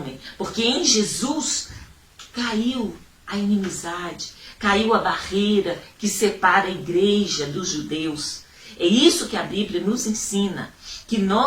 porque em Jesus caiu a inimizade, caiu a barreira que separa a igreja dos judeus. É isso que a Bíblia nos ensina, que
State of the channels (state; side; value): identical; both; correlation 1.00